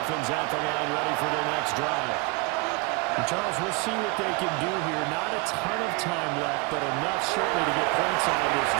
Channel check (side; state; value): left; quieter; 26.8 dB